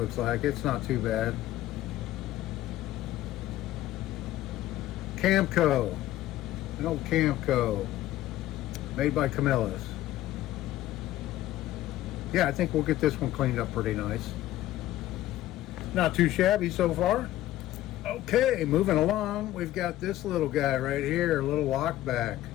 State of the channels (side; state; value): right; quieter; 14.6 dB